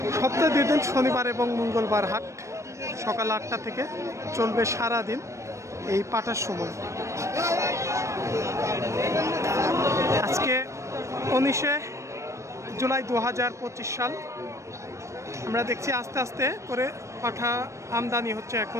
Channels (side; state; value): left; late; 0.15 ms